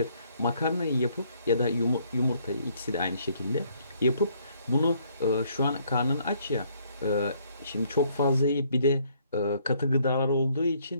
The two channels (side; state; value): both; inverted; correlation -0.66